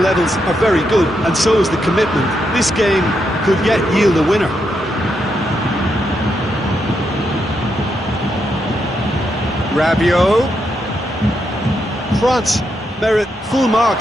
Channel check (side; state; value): both; normal; correlation 0.81